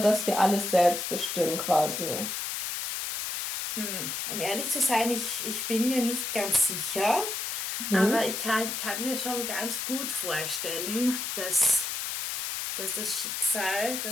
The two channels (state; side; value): noise; left; hiss, 3 dB below the sound